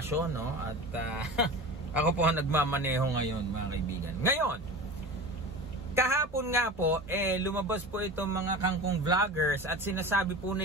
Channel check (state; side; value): normal; both; correlation 0.32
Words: no? At ako po ang nagmamaneho ngayon mga kaibigan. Ngayon, kahapon nga po, lumabas po itong mga kangkong vloggers at sinasabi po